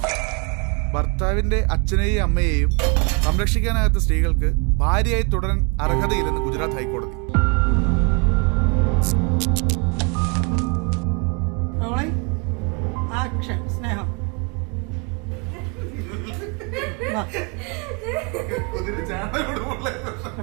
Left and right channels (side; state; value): left; quieter; 32.8 dB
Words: ഭർത്താവിന്റെ അച്ഛനെയും അമ്മയെയും സംരക്ഷിക്കാനാകാത്ത സ്ത്രീകൾക്ക് ഭാര്യയായി തുടരാൻ അർഹതയില്ലെന്ന് ഗുജറാത്ത് ഹൈക്കോടതി. സ്നേഹം